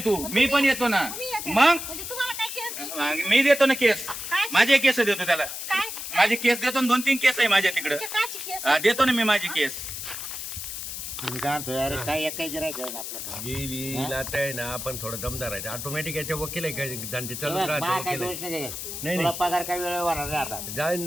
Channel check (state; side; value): noise; left; hiss, 7 dB below the sound